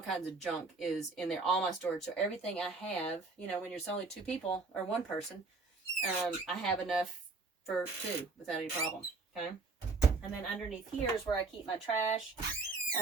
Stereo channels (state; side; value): quieter; left; 4.0 dB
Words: kinds of junk is in there, all my storage. So everything I have, when you're only 2 people or 1 person, I have enough for 2 without any problem. Okay. And then underneath here is where I keep my trash